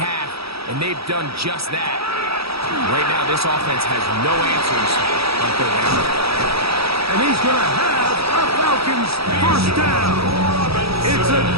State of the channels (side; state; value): left; late; 0.77 ms